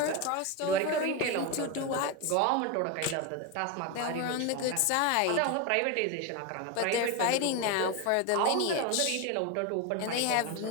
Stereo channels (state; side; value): different; both; correlation 0.03